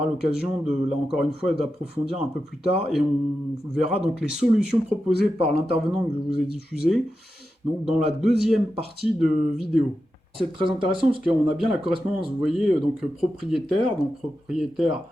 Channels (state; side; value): normal; both; correlation 0.90